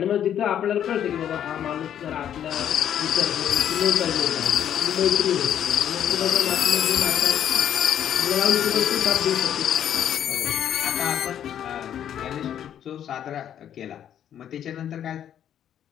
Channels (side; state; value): right; quieter; 9.9 dB